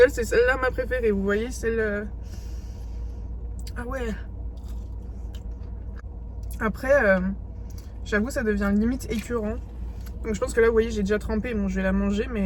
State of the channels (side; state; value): both; identical; correlation 1.00